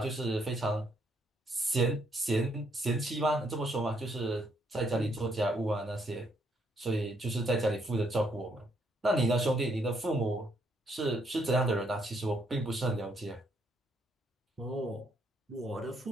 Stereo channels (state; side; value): normal; both; correlation 0.72